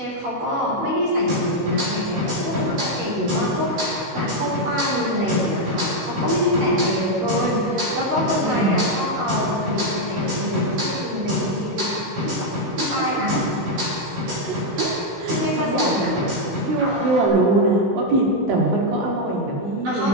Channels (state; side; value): late; left; 16 ms